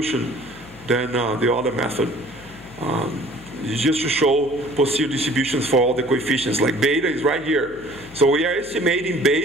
than the other method. It's just to show posterior distributions for all the coefficients. Like beta is right here. So we are estimating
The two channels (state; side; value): noise; left; hum, 22 dB below the sound